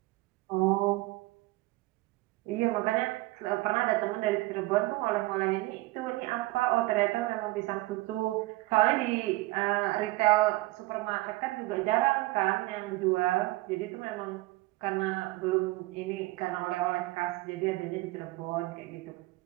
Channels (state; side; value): quieter; left; 20.4 dB